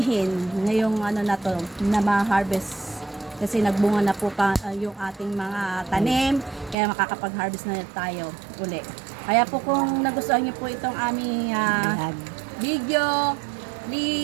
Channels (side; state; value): left; drops out; at 6.8 s